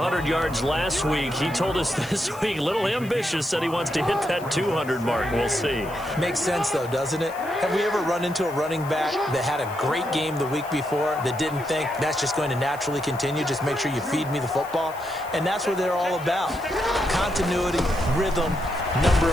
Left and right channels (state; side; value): noise; left; hiss, 20 dB below the sound